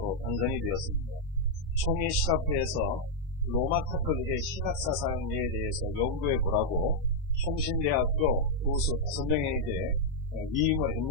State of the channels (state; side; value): normal; both; correlation -0.02